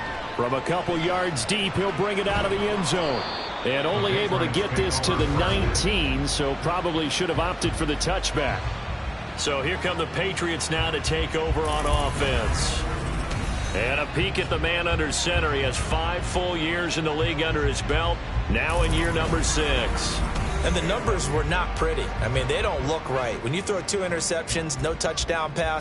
From a couple yards deep, he'll bring it out of the end zone. And only able to get this to the 19, so probably should have opted for the touchback. So here come the Patriots now to take over on offense. And a peek at the man under center. He has 5 full years in the league under his belt, now in year number 6. And the numbers were not pretty. I mean, they don't look right. When you throw 2 interceptions, no touchdown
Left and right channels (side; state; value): both; identical; correlation 1.00